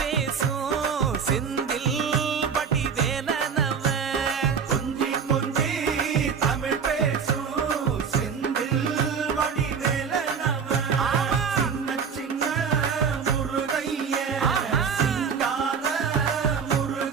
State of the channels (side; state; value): left; quieter; 6.5 dB